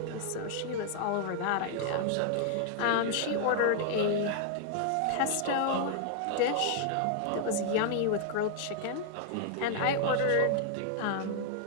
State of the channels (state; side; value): different; both; correlation -0.01